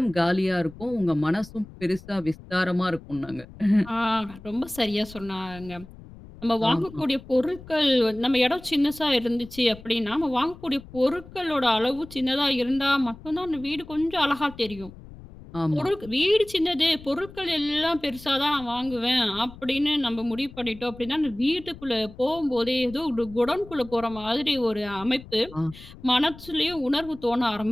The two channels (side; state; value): left; noise; rumble, 18 dB below the sound